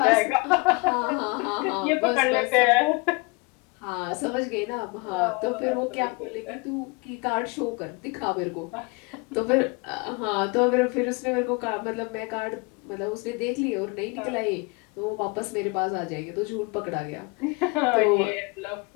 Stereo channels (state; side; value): quieter; right; 28.4 dB